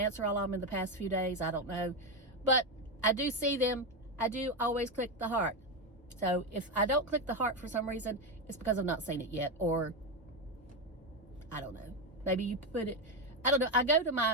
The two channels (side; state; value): both; normal; correlation 0.10